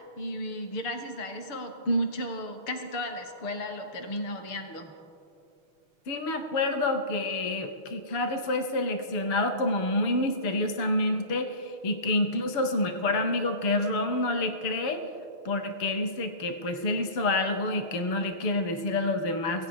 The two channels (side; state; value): right; late; 6.3 ms